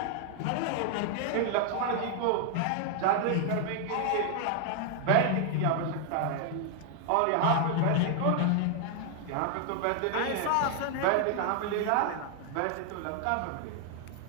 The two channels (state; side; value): different; both; correlation 0.00